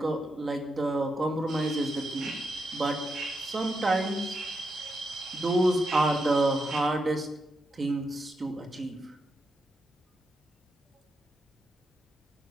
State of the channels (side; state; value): both; normal; correlation 0.84